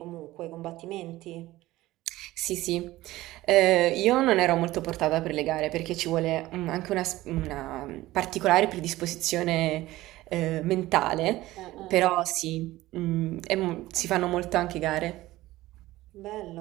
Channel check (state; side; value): quieter; left; 17.1 dB